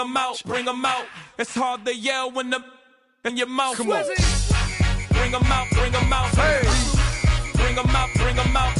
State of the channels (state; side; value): identical; both; correlation 1.00